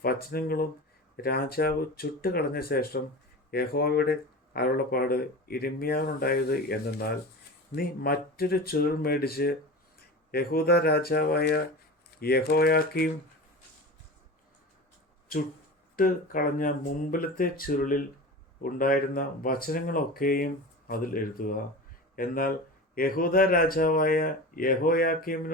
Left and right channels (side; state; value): both; normal; correlation 0.31